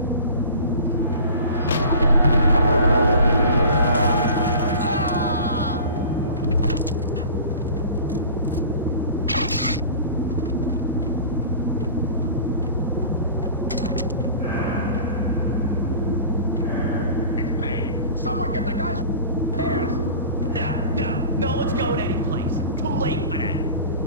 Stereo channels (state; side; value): inverted; both; correlation -0.40